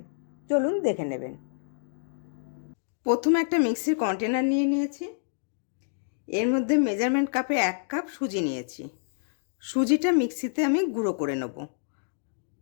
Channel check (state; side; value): silent; right; digital silence